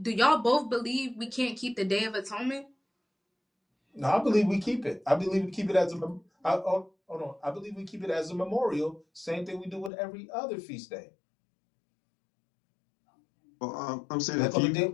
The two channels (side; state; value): right; drops out; at 9.9 s